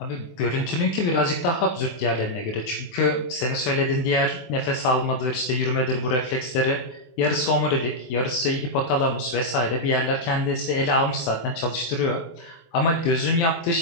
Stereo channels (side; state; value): right; late; 23 ms